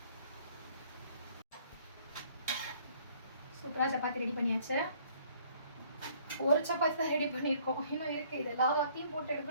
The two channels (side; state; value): both; inverted; correlation -0.60